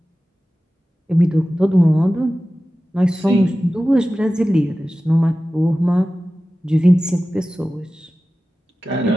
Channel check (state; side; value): normal; both; correlation 0.95